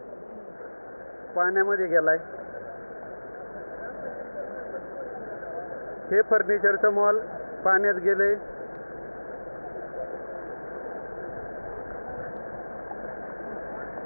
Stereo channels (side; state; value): both; inverted; correlation -1.00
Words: पाण्यामध्ये गेलाय. हे फर्निचरचं मॉल पाण्यात गेले.